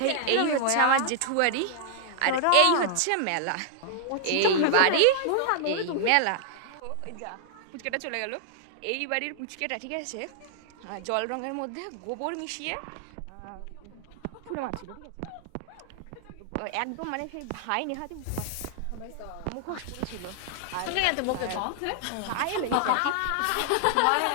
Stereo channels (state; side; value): different; both; correlation -0.01